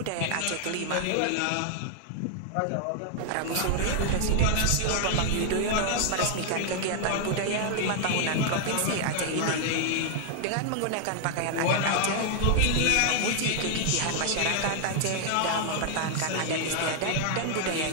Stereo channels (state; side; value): different; both; correlation 0.00